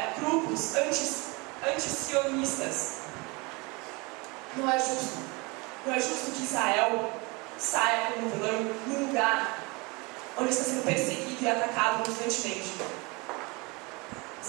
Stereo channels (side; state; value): left; quieter; 27.0 dB